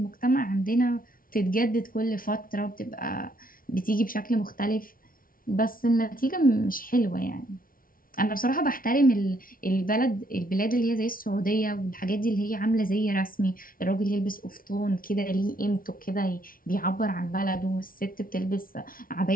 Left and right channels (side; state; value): right; late; 0.42 ms